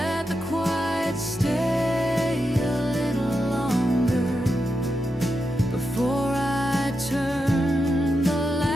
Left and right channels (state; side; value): normal; both; correlation 0.87